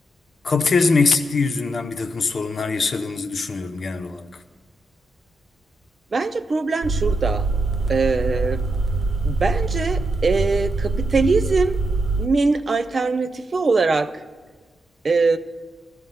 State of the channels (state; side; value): normal; both; correlation 0.84